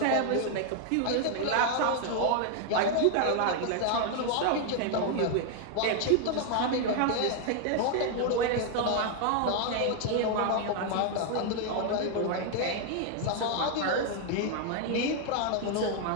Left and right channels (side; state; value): both; different; correlation 0.00